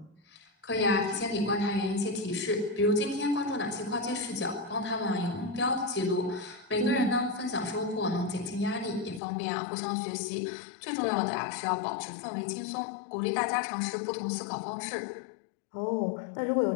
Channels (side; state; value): right; drops out; at 9.2 s